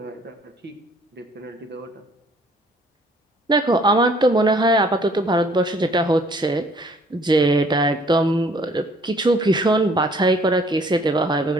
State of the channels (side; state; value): both; normal; correlation 0.59